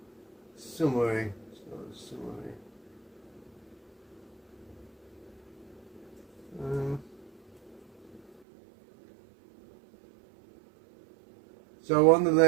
Summary. So on the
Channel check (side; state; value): left; drops out; at 8.4 s